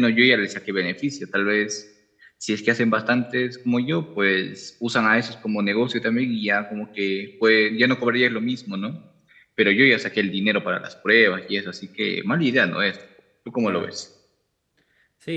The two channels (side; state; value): both; identical; correlation 1.00